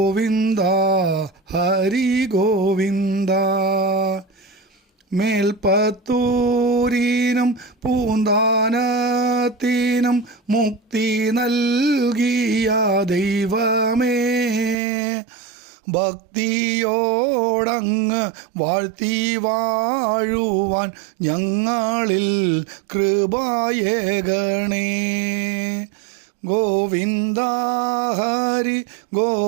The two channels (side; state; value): left; drops out; at 14.8 s